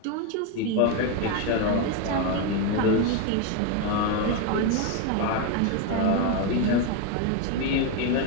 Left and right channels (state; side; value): different; both; correlation 0.02